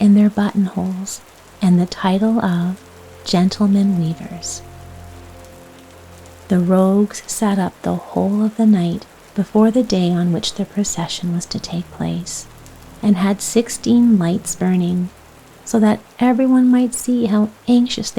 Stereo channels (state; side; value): identical; both; correlation 1.00